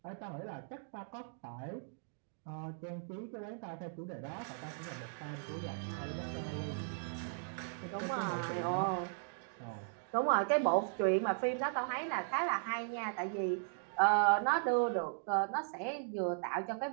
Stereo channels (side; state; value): left; silent; digital silence